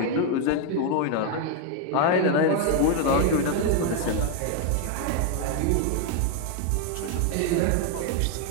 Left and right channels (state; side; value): different; both; correlation 0.01